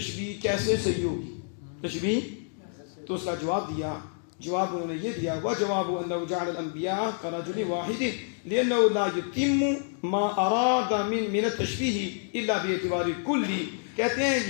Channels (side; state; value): right; silent; digital silence